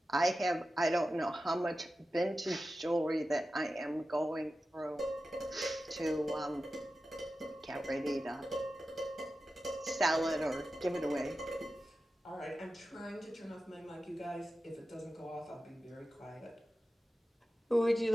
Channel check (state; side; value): normal; both; correlation 0.93